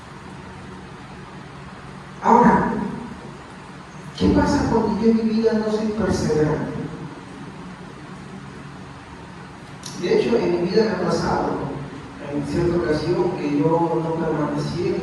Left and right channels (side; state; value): both; identical; correlation 1.00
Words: Ahora, ¿qué pasa cuando yo en mi vida no soy perseverante? De hecho, en mi vida me ha pasado, en cierta ocasión, que yo no permanecí en